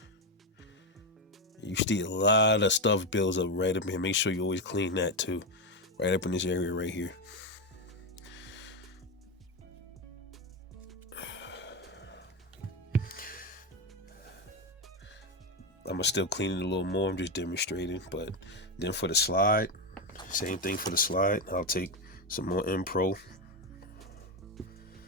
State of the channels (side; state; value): both; normal; correlation 0.12